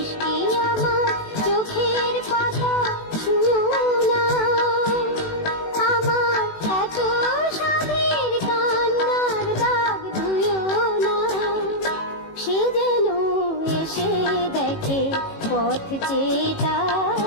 আমার চোখের পাতা ছুঁয়ো না। আমার এত সাধের কান্নার দাগ ধুয়ো না, সে যেন এসে দেখে পথ চেয়ে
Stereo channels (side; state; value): right; late; 18 ms